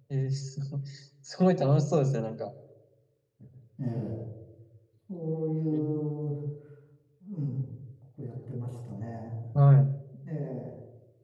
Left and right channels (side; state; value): both; identical; correlation 1.00